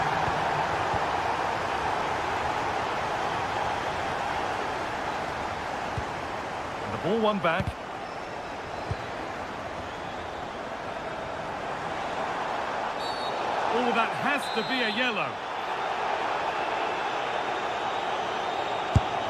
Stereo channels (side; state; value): both; identical; correlation 1.00